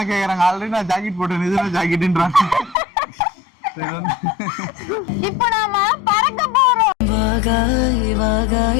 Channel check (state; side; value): drops out; right; at 2.8 s